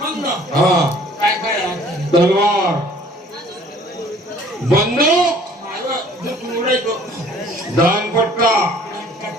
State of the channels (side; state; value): both; normal; correlation 0.53